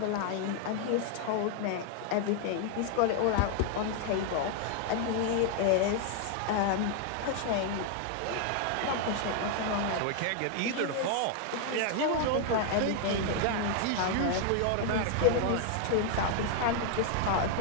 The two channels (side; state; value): both; different; correlation 0.00